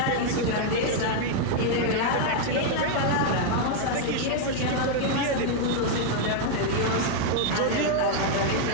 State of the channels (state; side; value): different; both; correlation 0.00